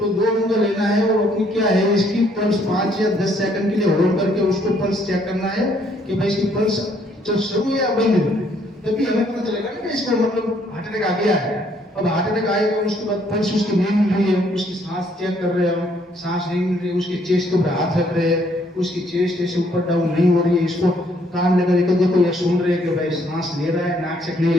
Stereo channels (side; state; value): both; normal; correlation 0.67